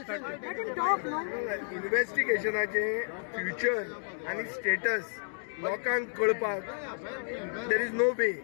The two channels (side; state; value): right; silent; digital silence